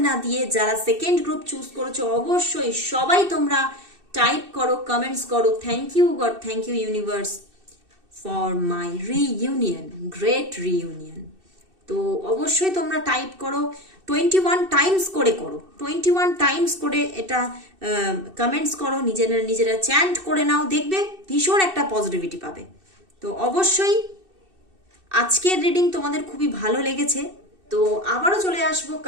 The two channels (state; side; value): late; left; 2.6 ms